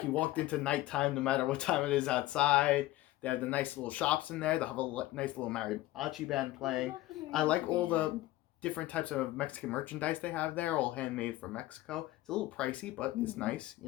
you walked into nighttime no matter what time it is outside. They have the nice little shops in there. They have a nice little mariachi band playing. I like all the different types of Mexican merchandise they have there, all handmade from Mexico. It's a little pricey, but it's nice,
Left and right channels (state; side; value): quieter; right; 16.6 dB